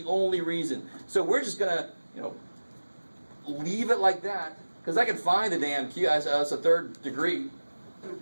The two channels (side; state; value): both; inverted; correlation -1.00